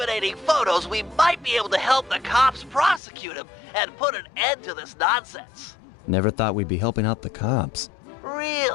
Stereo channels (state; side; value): drops out; right; at 3.0 s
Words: photos, we might be able to help the cops prosecute him and put an end to this nonsense. Never thought we'd be helping out the cops.